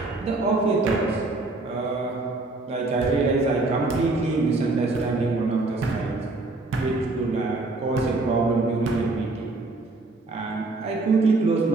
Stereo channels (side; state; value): left; quieter; 3.2 dB